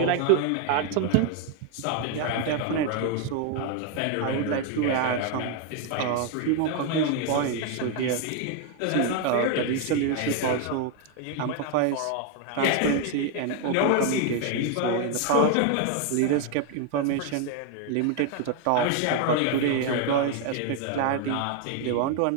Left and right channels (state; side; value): different; both; correlation 0.01